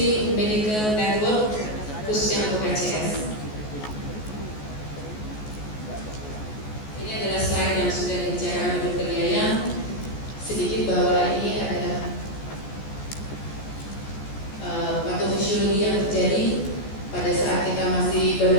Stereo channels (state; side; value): late; right; 14 ms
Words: medical network khususnya untuk ACS. Ini adalah slide yang sudah dibicarakan oleh Dr. Yayang. Sedikit bahwa ini adalah patofisiologi yang terjadi pada saat kita masih baru